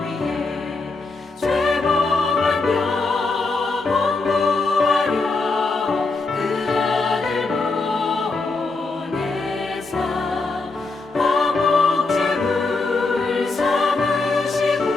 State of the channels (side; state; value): right; quieter; 3.7 dB